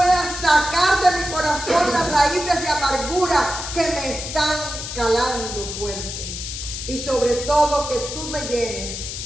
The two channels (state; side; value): noise; left; hiss, 7 dB below the sound